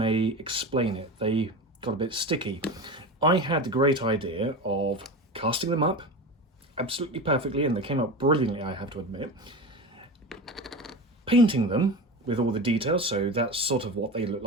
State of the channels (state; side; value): normal; both; correlation 0.27